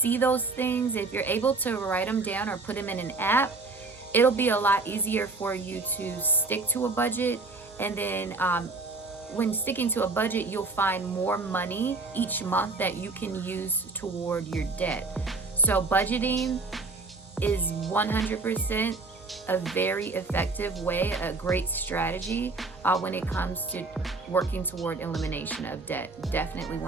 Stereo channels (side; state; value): left; quieter; 3.7 dB